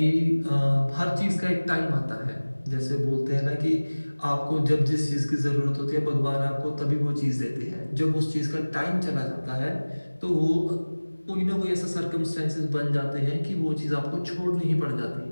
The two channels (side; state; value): both; inverted; correlation -1.00